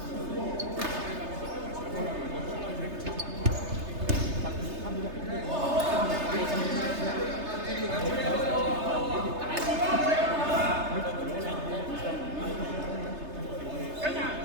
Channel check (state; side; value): late; left; 3.3 ms